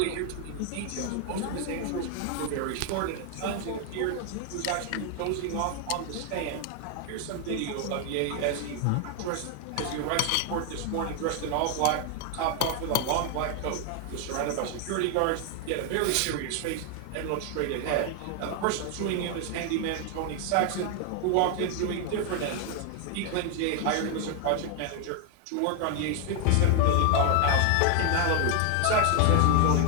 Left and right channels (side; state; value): both; different; correlation 0.00